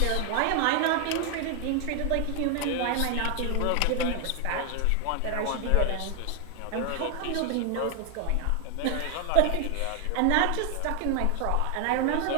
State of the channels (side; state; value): both; different; correlation 0.00